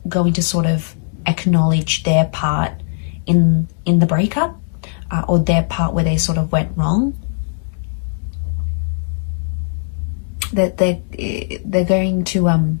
going to sort of acknowledge their part in the breakup, or their part where they sort of went wrong. That they're going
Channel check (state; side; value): silent; right; digital silence